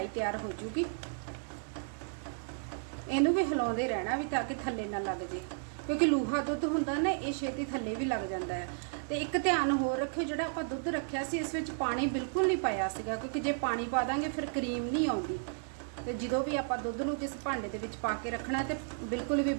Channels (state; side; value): silent; left; digital silence